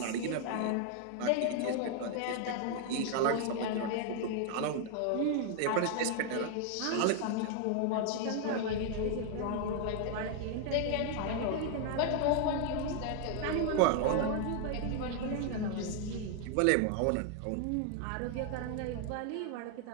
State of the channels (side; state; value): both; different; correlation 0.00